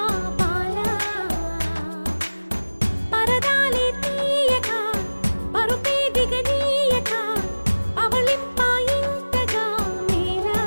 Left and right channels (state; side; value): inverted; both; correlation -1.00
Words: పాలా పరదాలే తీయక పరుపే దిగనీయక పవళింపాయింతగా మేరా